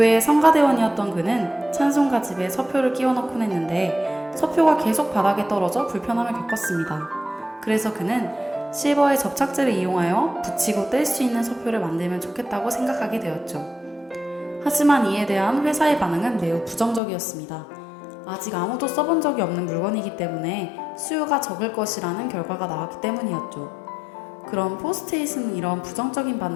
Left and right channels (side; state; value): right; drops out; at 17.0 s